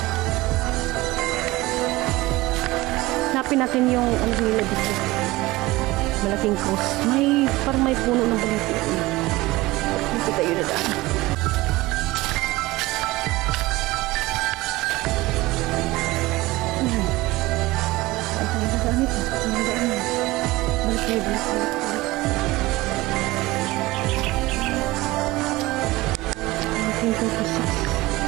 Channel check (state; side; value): quieter; left; 19.8 dB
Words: Hanapin natin yung ano nila dito. Malaking cross. Parang may puno ng baliti. Dito tayo na daan. Saan tayo na daan ito? Balik tayo, balik. 1936.